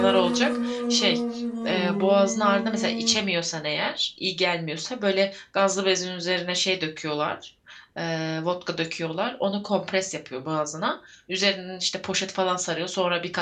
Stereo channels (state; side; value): identical; both; correlation 1.00